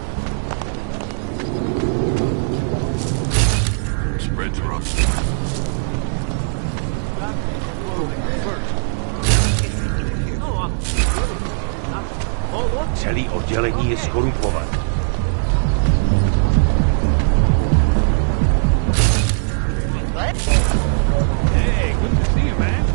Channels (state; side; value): silent; left; 66 dB below the other